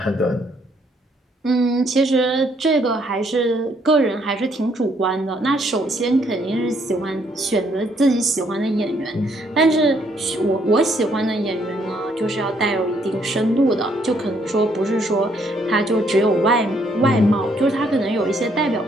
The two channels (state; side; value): normal; both; correlation 0.69